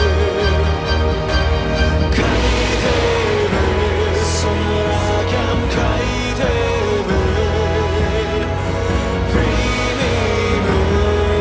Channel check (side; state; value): both; identical; correlation 1.00